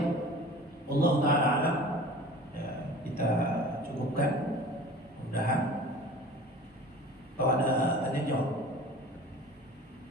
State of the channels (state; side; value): normal; both; correlation 0.41